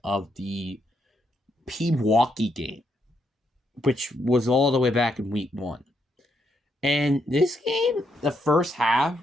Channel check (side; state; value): both; normal; correlation 0.77